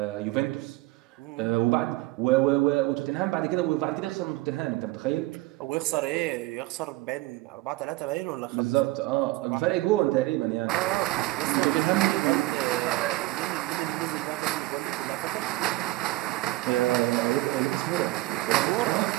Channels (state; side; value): quieter; left; 18.6 dB